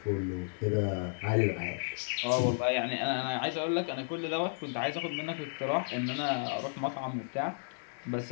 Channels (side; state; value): right; silent; 56 dB below the other